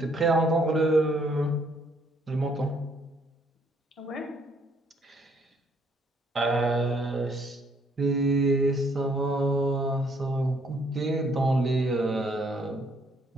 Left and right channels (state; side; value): normal; both; correlation 0.67